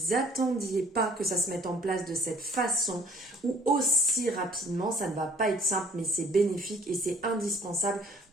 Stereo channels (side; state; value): both; normal; correlation 0.57